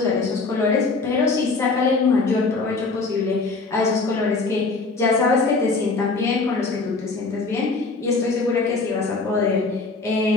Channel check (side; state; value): right; quieter; 3.9 dB